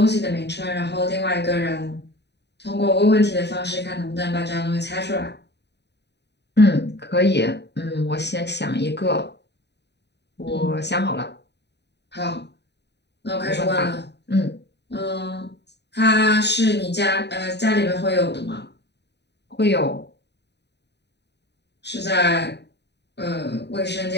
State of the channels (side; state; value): right; late; 0.50 ms